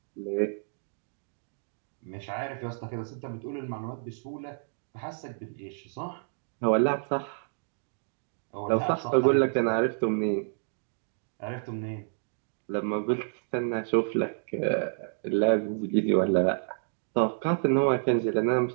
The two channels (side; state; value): left; silent; digital silence